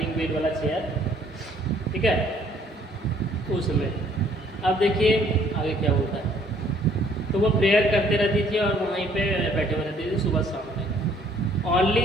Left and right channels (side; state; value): both; normal; correlation 0.61